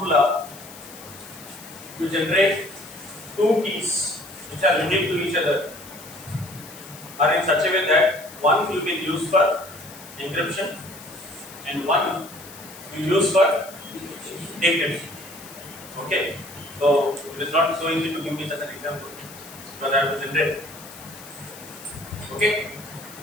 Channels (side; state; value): left; noise; hiss, 17 dB below the sound